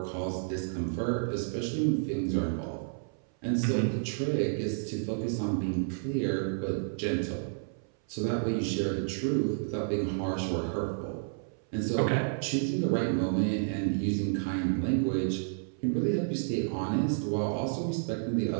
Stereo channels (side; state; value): left; silent; 57 dB below the other